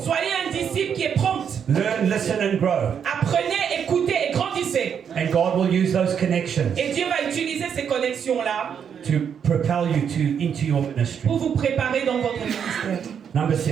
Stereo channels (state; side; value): quieter; left; 7.7 dB